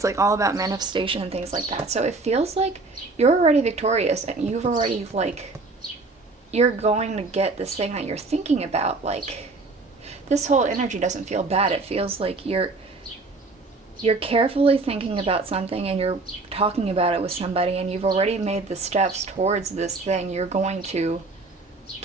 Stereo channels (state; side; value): quieter; left; 3.6 dB